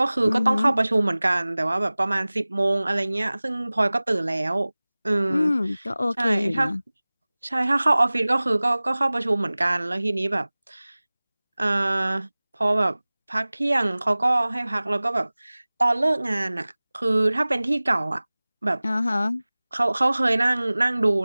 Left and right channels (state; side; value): inverted; both; correlation -0.99